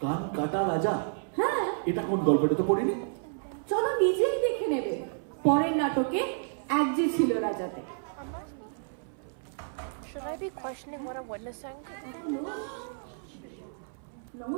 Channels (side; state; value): left; silent; 58 dB below the other